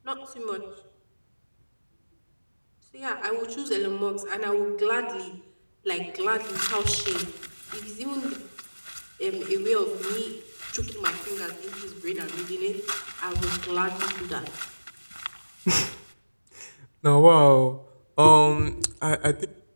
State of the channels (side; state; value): both; inverted; correlation -1.00